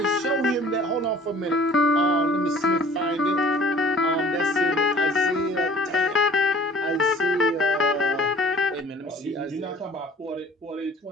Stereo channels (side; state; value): both; normal; correlation 0.50